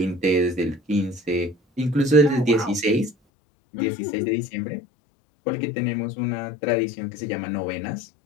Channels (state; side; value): drops out; right; at 3.2 s